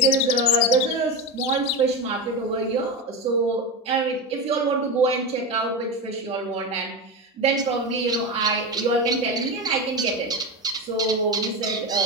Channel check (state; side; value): normal; both; correlation 0.19